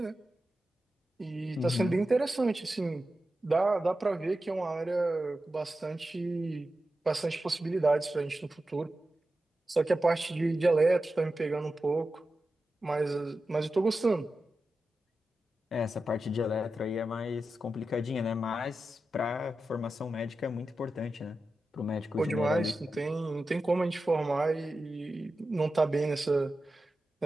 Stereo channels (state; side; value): normal; both; correlation 0.92